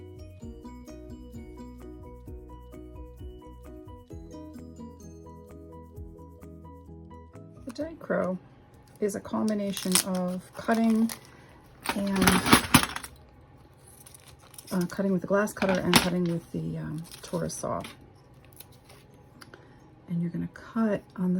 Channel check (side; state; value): both; identical; correlation 1.00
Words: The dichro is a combination of cutting and cutting with the glass cutter and cutting with the Taurus saw. And you're going to cut on